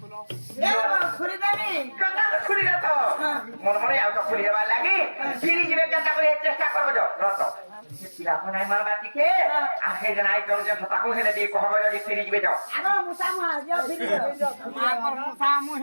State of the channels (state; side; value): inverted; both; correlation -1.00